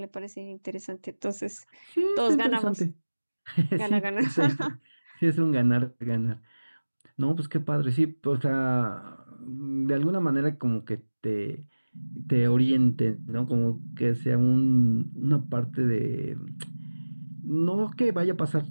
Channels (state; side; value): inverted; both; correlation -1.00